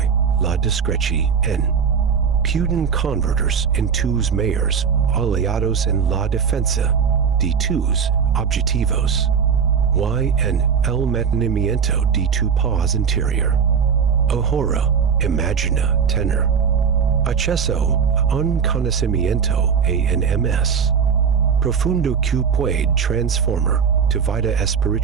la discreción. Pueden convertirse en tus mayores aliados en la defensa de tus objetivos y en el mantenimiento de tu paz interior. Ahora, imagina tener acceso a un conocimiento ENMS profundo que puede transformar tu vida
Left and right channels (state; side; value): quieter; left; 6.7 dB